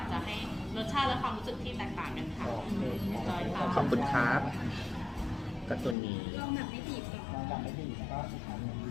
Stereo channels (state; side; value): drops out; right; at 6.0 s